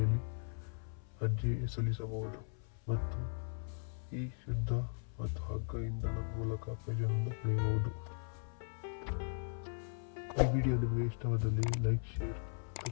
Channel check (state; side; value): silent; right; 52 dB below the other